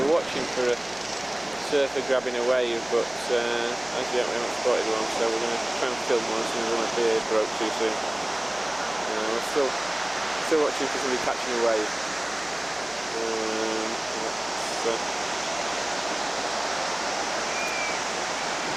watching for a surfer grabbing a wave, but as yet we haven't spotted one, so we're going to try and film one as soon as one appears. Broke too soon. We're still watching for somebody catching a wave.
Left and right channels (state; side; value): noise; right; hum, 25 dB below the sound